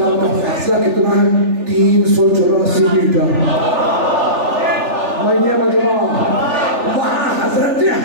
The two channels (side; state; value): left; late; 3.4 ms